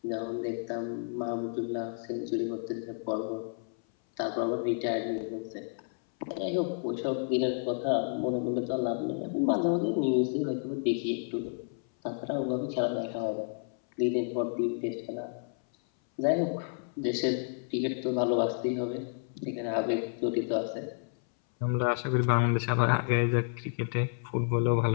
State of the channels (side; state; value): right; silent; 57 dB below the other